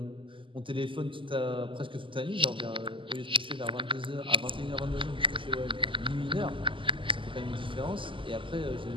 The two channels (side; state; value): left; late; 0.25 ms